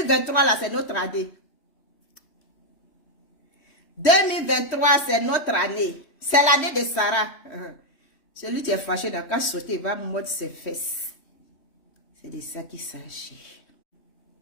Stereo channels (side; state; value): right; late; 3.1 ms